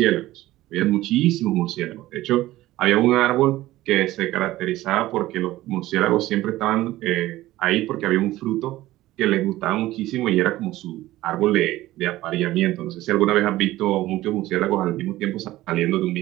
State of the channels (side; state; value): left; quieter; 16.3 dB